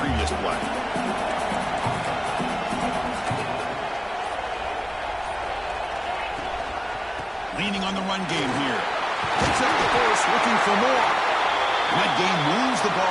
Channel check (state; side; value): identical; both; correlation 1.00